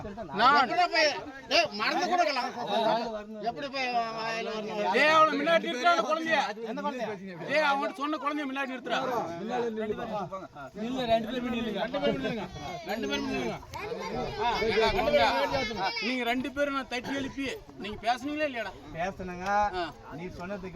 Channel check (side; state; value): both; identical; correlation 1.00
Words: நான் மறந்து கொடுக்கலாம் எப்படி போய் வாயில வரணும்? டேய் அவளை முன்னாடி நிறுத்துறான குழந்தைய. டேய் அவன் சொன்ன குழந்தைய முன்னாடி நிறுத்துறா. இல்ல ரெண்டு பேரும் நில்லுங்க. ஏடா குழந்தை, நீங்க 2 பேரும் நான் தட்டி எழுப்பி நீங்க பேசுனீங்களா இல்லையாடா? பேசுனங்க. நீ